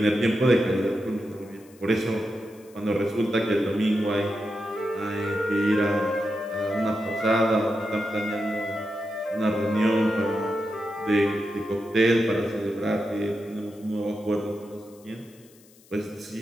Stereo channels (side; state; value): left; noise; hiss, 27 dB below the sound